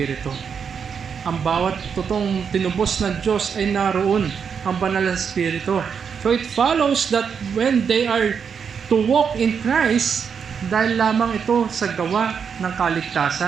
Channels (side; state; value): left; quieter; 6.7 dB